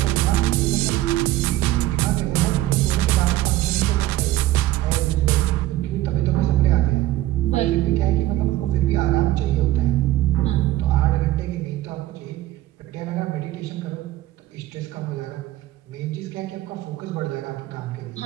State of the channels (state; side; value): quieter; left; 15.4 dB